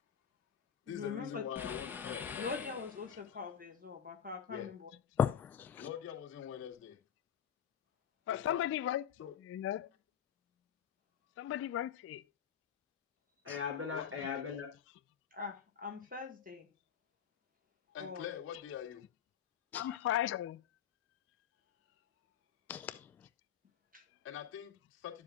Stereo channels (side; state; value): right; quieter; 8.6 dB